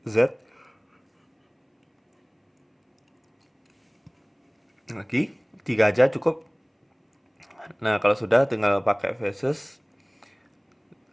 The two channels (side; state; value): both; identical; correlation 1.00